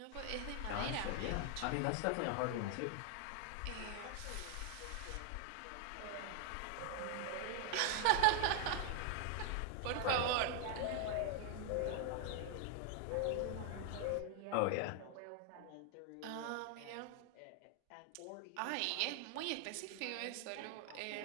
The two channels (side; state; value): both; different; correlation 0.00